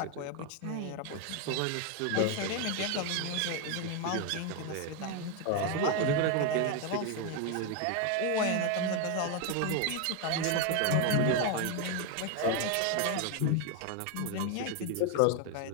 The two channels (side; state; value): both; different; correlation 0.01